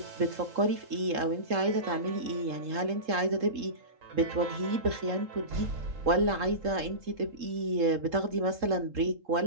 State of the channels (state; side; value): late; left; 3.7 ms